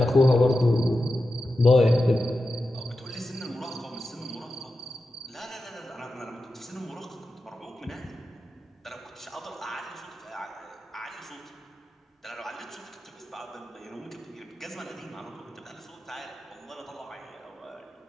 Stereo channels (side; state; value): both; normal; correlation 0.91